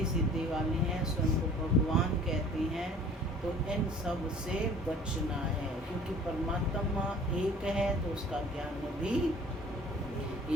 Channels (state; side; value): normal; both; correlation 0.49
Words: सिद्धि वाले हैं, स्वयं को भगवान कहते हैं, तो इन सब से बचना है, क्योंकि परमात्मा एक है तो उसका ज्ञान भी